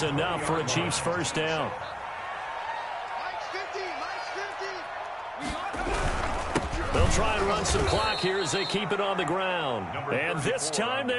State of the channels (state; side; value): identical; both; correlation 1.00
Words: enough for a Chiefs first down. They'll try and run some clock here as they keep it on the ground. And this time they